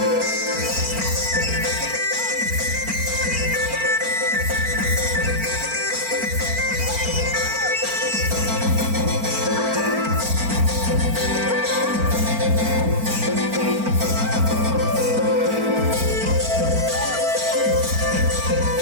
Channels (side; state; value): left; late; 4.4 ms